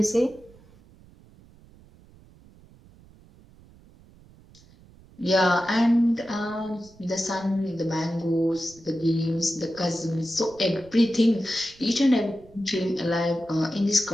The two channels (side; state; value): right; noise; rumble, 25 dB below the sound